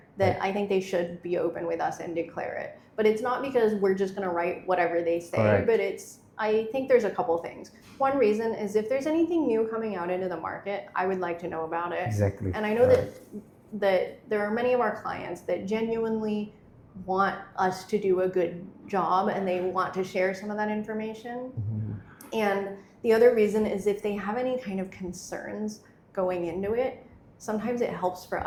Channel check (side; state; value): both; identical; correlation 1.00